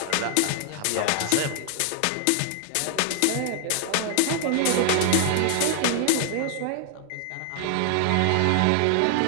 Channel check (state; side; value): different; both; correlation 0.00